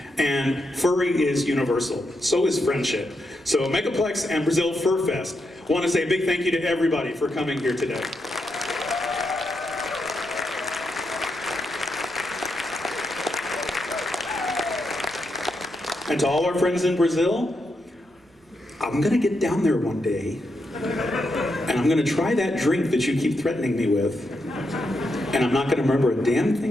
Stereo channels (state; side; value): normal; both; correlation 0.83